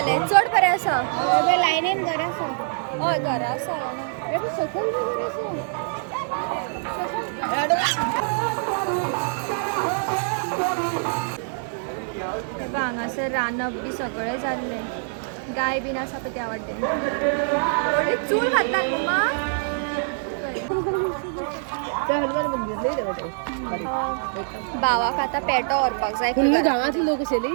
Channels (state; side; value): silent; left; digital silence